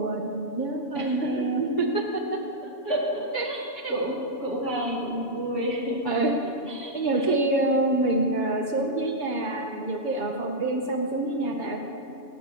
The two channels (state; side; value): late; right; 7.0 ms